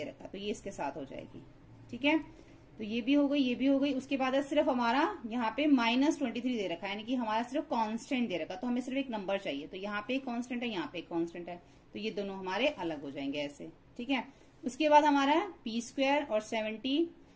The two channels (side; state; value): both; identical; correlation 1.00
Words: रखा, तो ये इसके साथ हो जाएगी, ठीक है। तो ये भी हो गई, ये भी हो गई। उसके बाद है सिर्फ हमारा यहाँ पे -23 दे रखा है, यानी कि हमारा सिर्फ कांस्टेंट दे रखा, तो हमें सिर्फ एक नंबर चाहिए, तो यहाँ पे एक कांस्टेंट है, यहाँ पे एक कांस्टेंट है, तो ये दोनों हमारे अलग हो जाएंगे ऐसे, ठीक है। उसके बाद हमारा P² और 70,